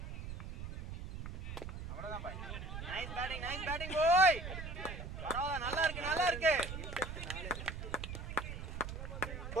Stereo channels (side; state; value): right; noise; rumble, 7 dB below the sound